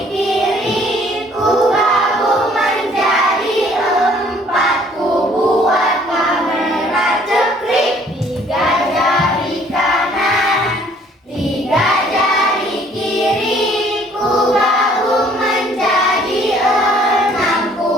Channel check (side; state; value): both; normal; correlation 0.58